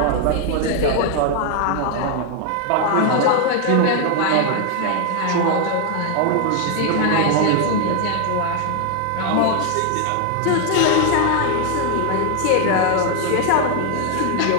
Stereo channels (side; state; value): both; different; correlation 0.01